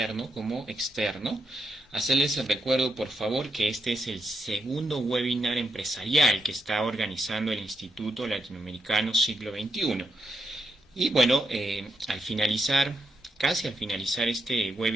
como externo. Hacerles el recuerdo, por favor, que este es el segundo webinar empresarial que está organizando el Instituto Latinoamericano Siglo XXI. Y bueno, al finalizar, casi al finalizar este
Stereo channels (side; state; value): both; normal; correlation 0.82